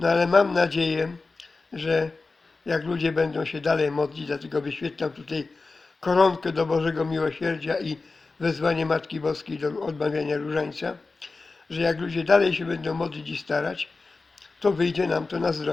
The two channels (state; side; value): quieter; right; 3.8 dB